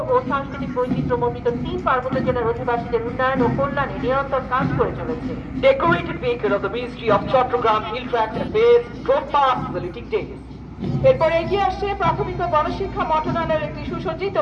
ও সাংস্কৃতিক বৈচিত্র্যমণ্ডিত 3 পার্বত্য জেলার অধিবাসীদের উন্নয়ন ও কল্যাণে নিরন্তর কাজ করে চলেছে। Decorated vehicle of the Ministry of Chattogram Hill Tract Affairs drove past the saluting day. এরপর এগিয়ে আসছে প্রাথমিক ও গণশিক্ষা মন্ত্রণালয়ের একটি সুসজ্জিত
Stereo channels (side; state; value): both; identical; correlation 1.00